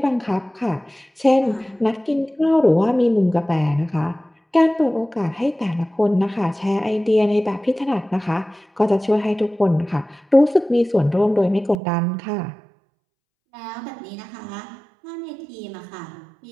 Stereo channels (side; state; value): left; drops out; at 11.8 s